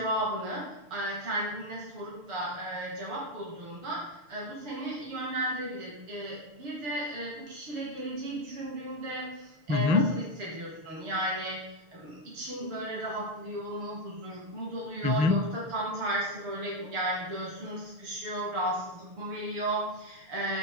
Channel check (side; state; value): left; late; 6.7 ms